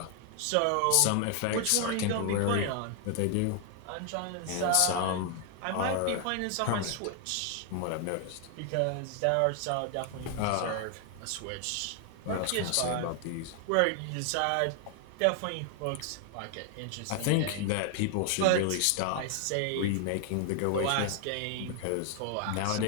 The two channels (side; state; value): both; different; correlation 0.00